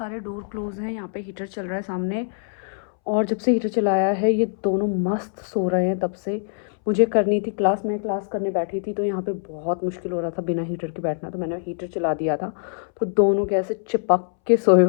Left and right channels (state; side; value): silent; right; 63 dB below the other